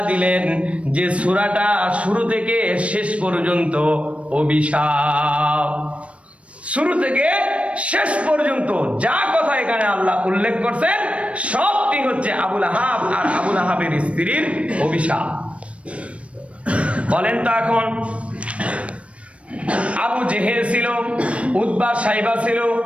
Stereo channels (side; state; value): left; late; 0.062 ms